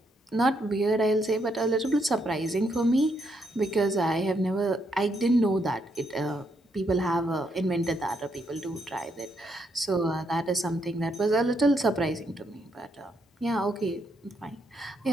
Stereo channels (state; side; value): normal; both; correlation 0.76